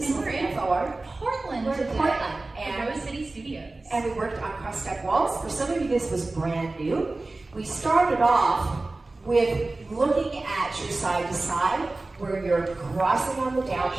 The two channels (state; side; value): quieter; left; 3.2 dB